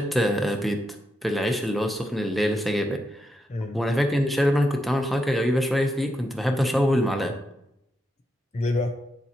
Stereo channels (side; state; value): both; normal; correlation 0.84